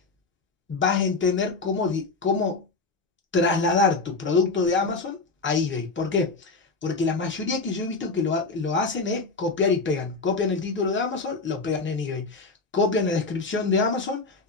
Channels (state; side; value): quieter; right; 3.9 dB